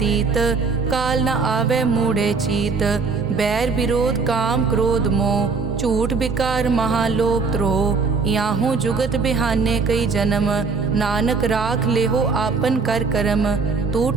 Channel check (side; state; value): left; quieter; 4.7 dB